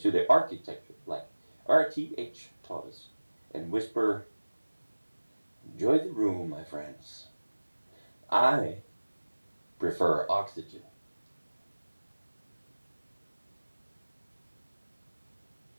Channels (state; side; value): inverted; both; correlation -1.00